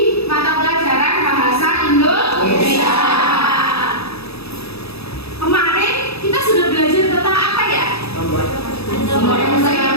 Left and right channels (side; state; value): right; late; 0.78 ms